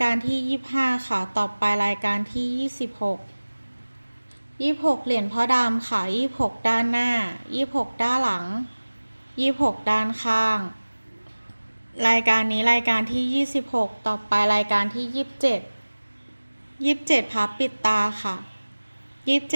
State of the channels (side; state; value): both; inverted; correlation -1.00